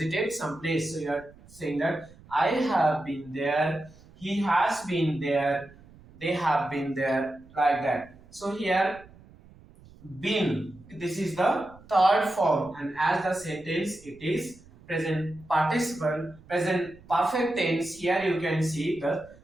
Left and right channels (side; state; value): right; noise; rumble, 24 dB below the sound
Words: some place. So you are saying that I have been there, he has been there, they have been there, like that. So here been, this is the third form, and as the sentence it is present participle, present perfect tense. Here you can see the